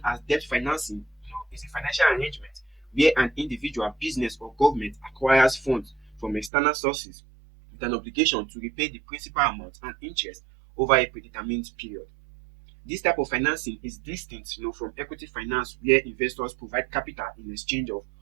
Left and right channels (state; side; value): drops out; left; at 6.5 s